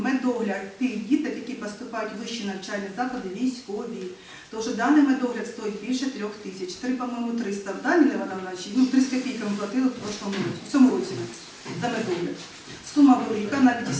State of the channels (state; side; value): identical; both; correlation 1.00